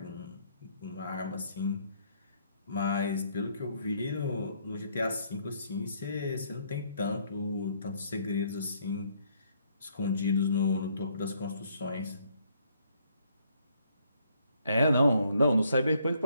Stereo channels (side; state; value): both; inverted; correlation -0.68